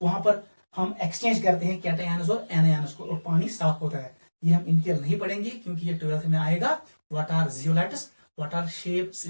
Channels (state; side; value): inverted; both; correlation -1.00